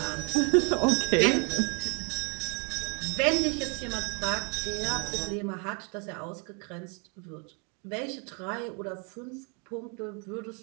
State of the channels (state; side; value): quieter; left; 35.4 dB